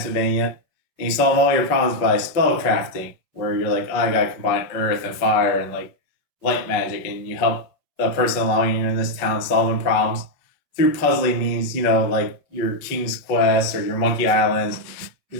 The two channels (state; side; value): late; right; 5.4 ms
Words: and you solve all your problems by spell crafting, where you're like, oh, I gotta combine earth and fire and like light magic, and you help the person along you in this town solving problems through puzzling means, like your King's Quest or your Monkey Islands,